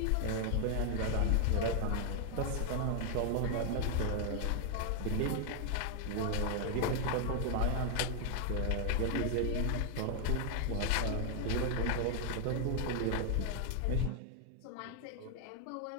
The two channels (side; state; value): both; different; correlation 0.00